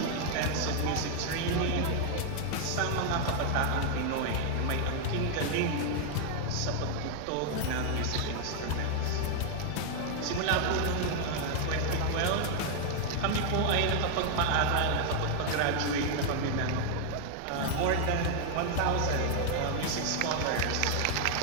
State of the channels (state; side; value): different; both; correlation 0.00